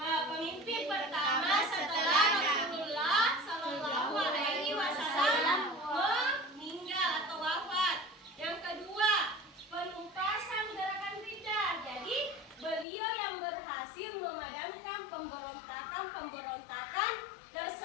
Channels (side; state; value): right; drops out; at 12.9 s